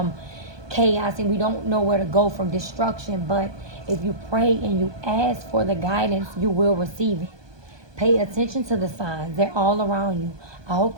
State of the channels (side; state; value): left; late; 1.2 ms